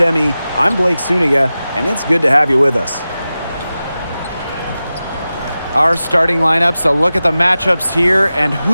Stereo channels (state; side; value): inverted; both; correlation -0.94